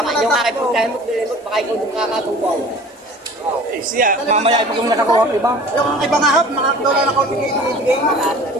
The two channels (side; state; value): both; normal; correlation 0.44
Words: yung aking pagkain mo, dilimot, baka ikaw yung kakatubaw. Eh, siya, mamaya pag kung nakakuha ang iba. Yung iba nga hap, mga dola na kaunti bigay mo.